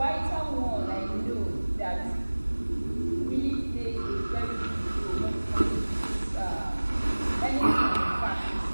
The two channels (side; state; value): both; inverted; correlation -1.00